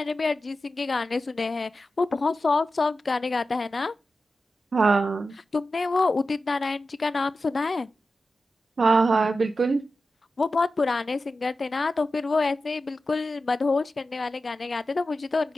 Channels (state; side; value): normal; both; correlation 0.92